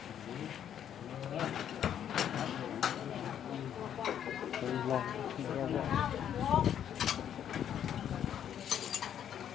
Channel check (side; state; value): right; quieter; 9.6 dB